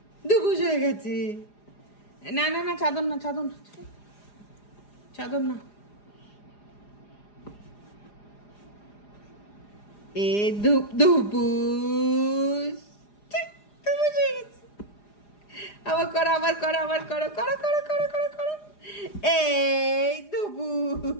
দুবুস হয়ে গেছে। না না না, চাদর না, চাদর না, চাদর না। এ ধুপ ধুপুস, ঠিক, দুবুস হয়ে গেছে। আবার করো, আবার করো, আবার করো, করো করো করো করো করো। এই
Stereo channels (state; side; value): late; right; 4.9 ms